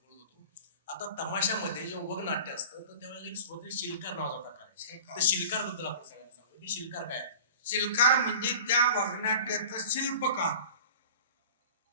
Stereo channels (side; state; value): both; inverted; correlation -0.39